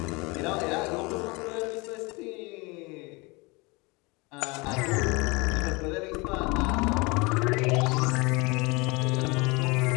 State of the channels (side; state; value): right; quieter; 26.4 dB